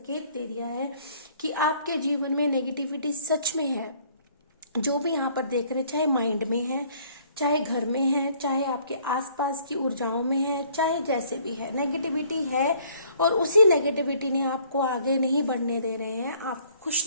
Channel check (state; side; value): inverted; both; correlation -0.60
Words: दे दिया है कि आपके जीवन में नेगेटिविटी सच में है। जो भी यहाँ पर देख रहे हैं, चाहे माइंड में है, चाहे घर में है, चाहे आपके आसपास की ऊर्जाओं में है, चाहे जैसे भी है, नेगेटिविटी है, और उसी नेगेटिविटी ने आपको आगे नहीं बढ़ने दे रहे हैं। आप खुश